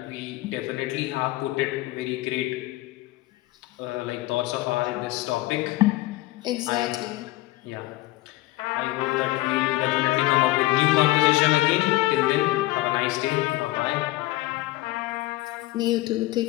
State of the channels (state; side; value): quieter; right; 18.5 dB